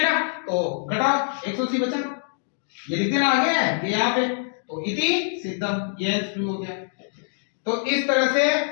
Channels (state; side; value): silent; right; digital silence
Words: ना। तो घटाओ 180 बचा, ये लिख देना आगे है यहाँ पे, तो इति सिद्धम, ये प्रूव हो गया। तो इस तरह से